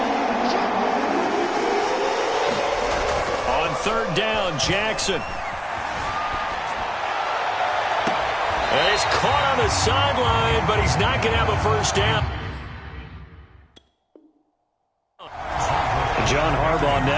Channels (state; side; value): identical; both; correlation 1.00